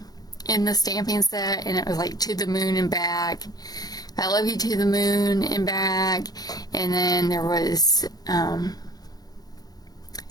in the stamping set, and it was like to the moon and back. I love you to the moon and back. And then there was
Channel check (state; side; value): late; right; 0.19 ms